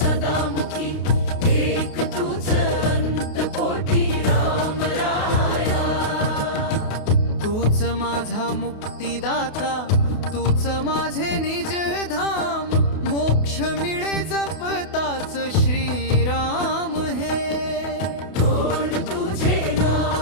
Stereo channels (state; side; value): late; right; 28 ms